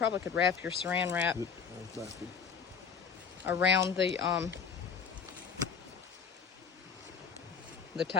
could wrap your saran wrap around the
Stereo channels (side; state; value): right; quieter; 6.5 dB